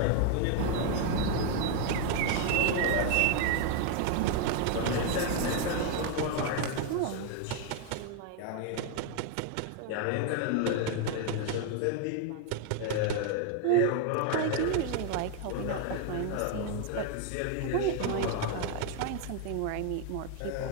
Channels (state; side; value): different; both; correlation 0.01